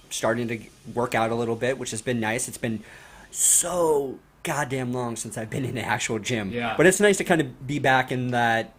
starting to work out a little bit, which has been nice. It's been so goddamn long since I've been in an actual gym. Yeah. But it's nice to kind of be back in that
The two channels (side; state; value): both; identical; correlation 1.00